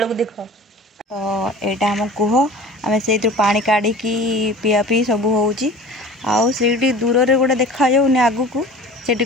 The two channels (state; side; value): normal; both; correlation 0.41